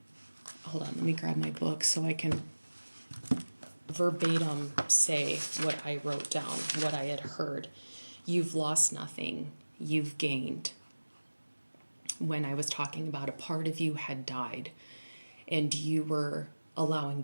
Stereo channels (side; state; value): both; inverted; correlation -1.00